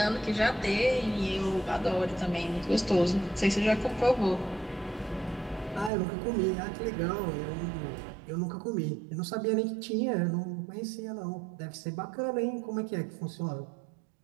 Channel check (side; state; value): left; drops out; at 5.9 s